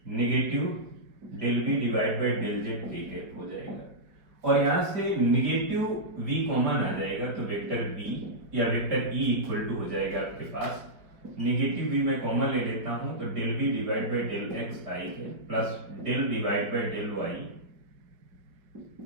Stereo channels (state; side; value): late; left; 4.9 ms